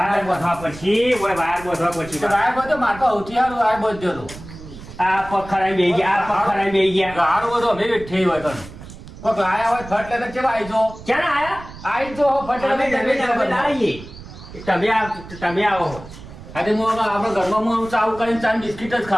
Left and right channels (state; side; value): noise; right; rumble, 15 dB below the sound